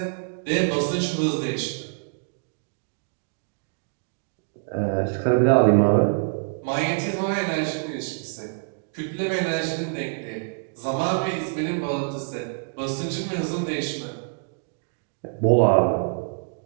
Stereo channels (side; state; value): left; silent; digital silence